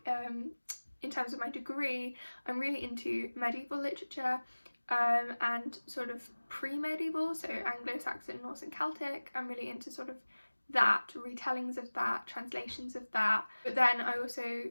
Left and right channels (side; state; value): both; inverted; correlation -1.00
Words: in terms of my degree, I'm really into medieval literature, and sort of pre-medieval, so Anglo-Saxon, Norse and Celtic. I'm really into sort of that, retellings of that, translations of that. But then I also